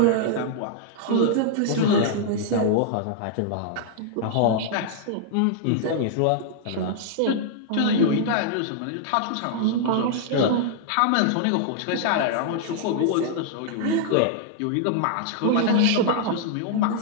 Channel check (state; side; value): different; both; correlation -0.01